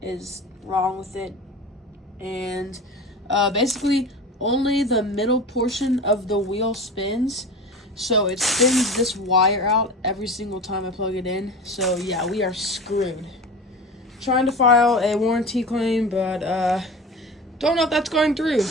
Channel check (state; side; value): normal; both; correlation 0.32